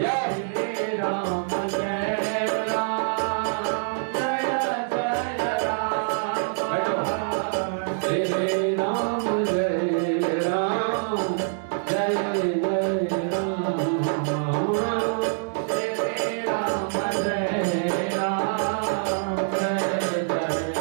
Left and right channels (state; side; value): silent; left; digital silence